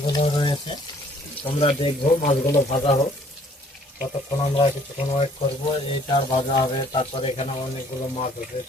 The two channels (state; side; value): normal; both; correlation 0.59